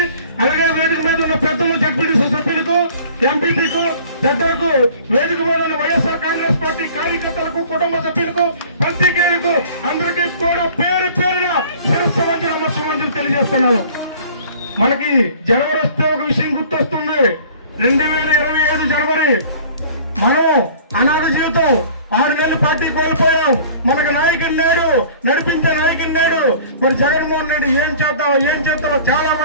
అలాగే వేదిక మీద ఉన్న పెద్దలు, జడ్పీటీసీ సభ్యులకు, ఎంపీపీకు, పెద్దలకు, వేదిక మీద ఉన్న వైఎస్ఆర్ కాంగ్రెస్ పార్టీ కార్యకర్తలకు, కుటుంబ సభ్యులకు, పత్రికేయులకు అందరికీ కూడా పేరు పేరున శిరస్సు వంచి నమస్కారం తెలియజేస్తున్నాను. మనకి జనవరి వస్తే ఒక విషయం గుర్తొస్తుంది. 2025 జనవరి మనం అనాథ జీవితం 6 నెలలు పార్టీ కోల్పోయాం. మనకు నాయకుని నేడు, నడిపించే నాయకుని నేడు. మరి జగన్మోహన్ రెడ్డి ఏం చేద్దాం చాలా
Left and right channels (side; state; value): both; inverted; correlation -0.48